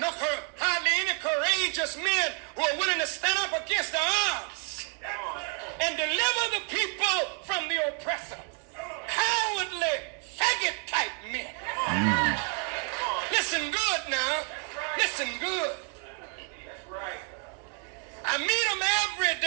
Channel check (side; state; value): left; quieter; 37.1 dB